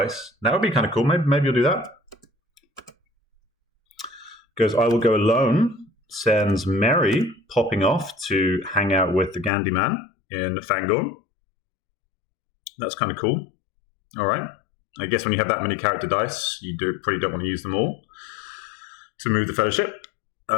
That would be kind of cool. Maybe you'll do that. Goes, I will go alone. Sends Merry popping off to hang out with the Gandhi Man in Fangorn. That's kind of cool. All right. I guess when you have that many character dice, you probably don't want to use them all. to move the Fellowship.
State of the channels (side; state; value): right; drops out; at 9.5 s